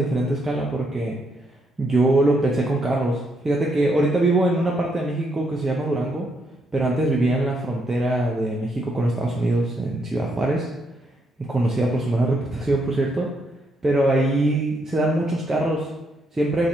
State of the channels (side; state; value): both; normal; correlation 0.76